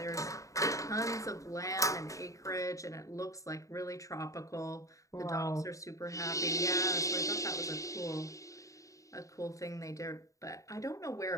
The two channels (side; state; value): right; late; 0.16 ms